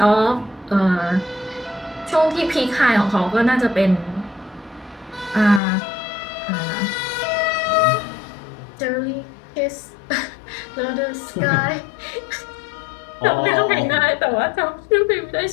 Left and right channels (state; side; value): drops out; right; at 5.6 s